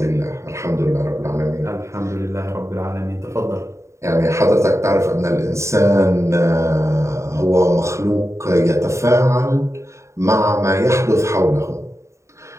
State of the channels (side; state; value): left; late; 0.14 ms